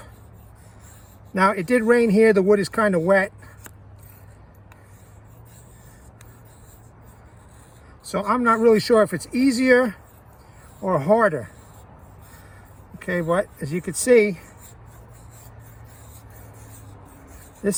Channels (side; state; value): both; identical; correlation 1.00